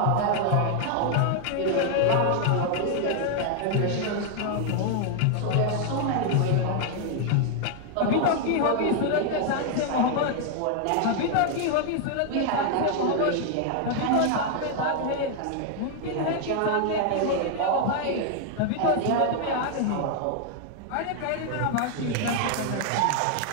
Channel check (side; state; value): both; different; correlation 0.00